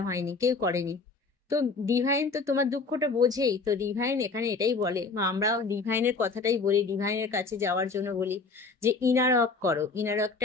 হয়নি, কেউ করেনি। তো ডিভাইন তো তোমার দুঃখটা বোঝেই। তো ডিভাইন এখানে এটাই বলে, বা আমরা ডিভাইনের কথাটাই বলি, ডিভাইনের কাছে যাওয়ার জন্য বলি যে ইনার ওয়ার্ক করো। ইনার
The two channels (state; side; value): quieter; right; 4.3 dB